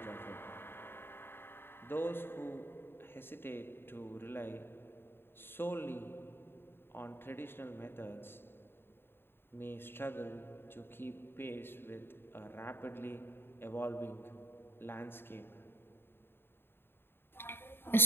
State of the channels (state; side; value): late; right; 0.11 ms